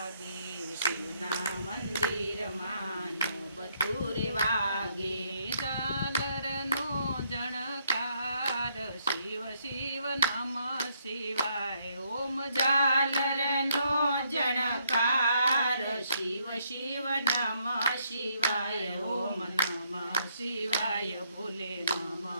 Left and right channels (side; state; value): both; inverted; correlation -0.73